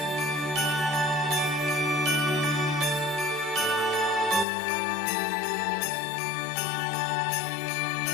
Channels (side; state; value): right; drops out; at 4.5 s